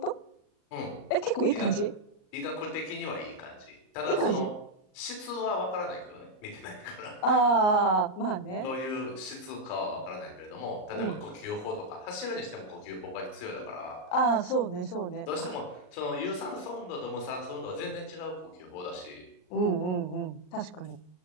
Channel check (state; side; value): late; right; 38 ms